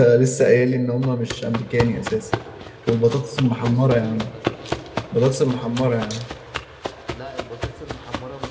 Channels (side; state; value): both; identical; correlation 1.00